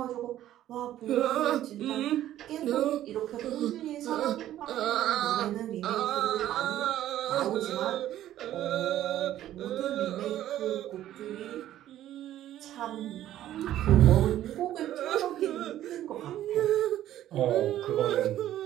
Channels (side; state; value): left; quieter; 12.7 dB